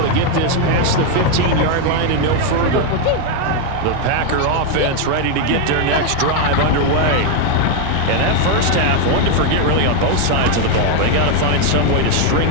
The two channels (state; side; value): different; both; correlation 0.01